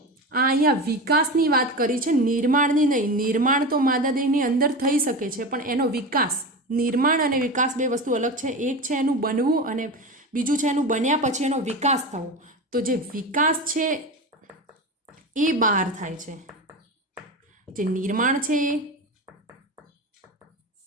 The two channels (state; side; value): normal; both; correlation 0.25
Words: આ અહીંયા વિકાસની વાત કરી છે, નિર્માણની નહીં. નિર્માણ તો માદા દેહની અંદર થઈ શકે છે, પણ એનો વિકાસ, નિર્માણ અને વિકાસ બે વસ્તુ અલગ છે. એક છે એનું બનવું અને બીજું છે એનું બન્યા પછી એનો વિકાસ થવો. તો જે વિકાસ છે એ બહાર થાય છે, જે નિર્માણ છે